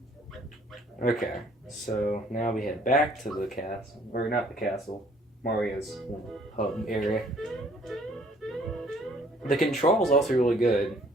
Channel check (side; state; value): both; normal; correlation 0.59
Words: Okay, so now we head back to the castle, or not the castle, Mario's hub area. The control's also really good.